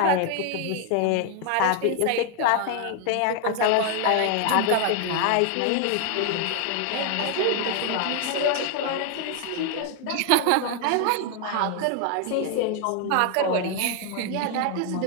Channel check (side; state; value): both; different; correlation 0.00